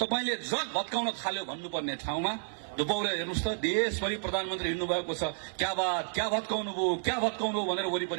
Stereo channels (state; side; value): silent; left; digital silence